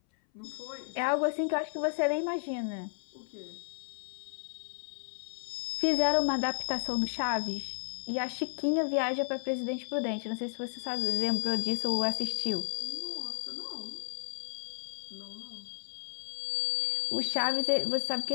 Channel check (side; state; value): right; silent; 56 dB below the other